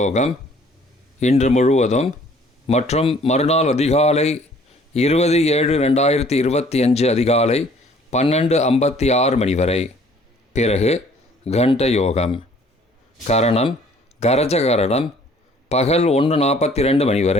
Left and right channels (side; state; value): both; normal; correlation 0.57